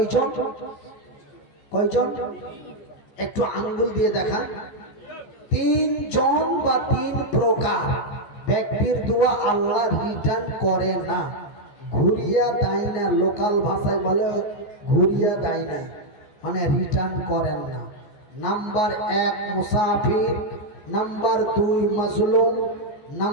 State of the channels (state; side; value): late; right; 14 ms